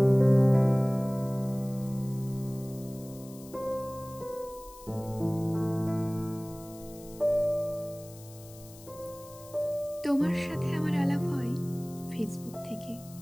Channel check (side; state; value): left; noise; hiss, 20 dB below the sound